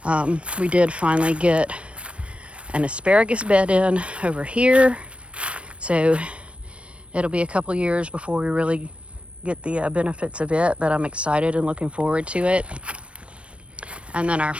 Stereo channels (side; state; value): left; late; 0.061 ms